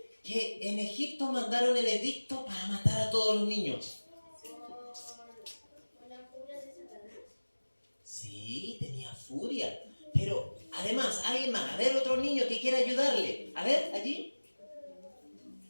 que en Egipto mandaron el edicto para matar a todos los niños? ¿Por la furia de Satanás? Sí, tenía furia. Pero además, alguien más. A ver, otro niño que quiera ayudarle. A ver, allí.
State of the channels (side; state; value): both; inverted; correlation -1.00